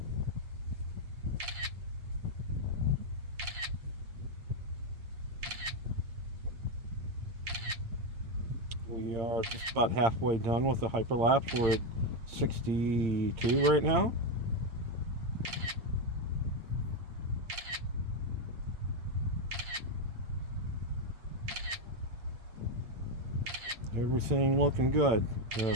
We are just about halfway done with the hyperlapse. We're at 62 right now. Everything looking good.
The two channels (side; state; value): left; late; 8.7 ms